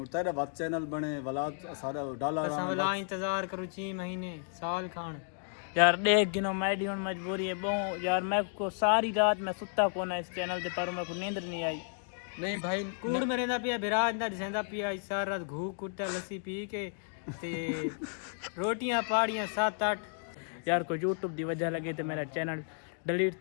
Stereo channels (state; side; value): silent; right; digital silence